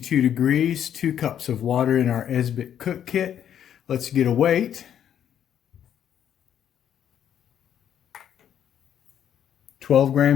degrees, 2 cups of water in our Esbit cook kit. Let's get a weight. 12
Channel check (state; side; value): quieter; right; 9.6 dB